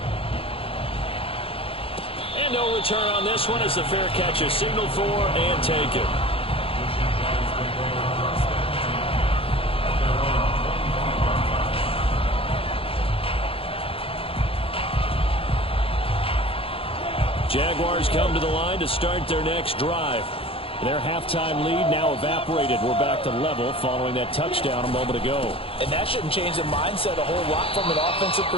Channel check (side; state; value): right; late; 0.27 ms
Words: And no return on this one as the fair catch is signaled for and taken. Jaguars come to the line to start their next drive. Their halftime lead now evaporated. We're back to level following that touchdown a moment ago. And that shouldn't change the mindset a whole lot from an offensive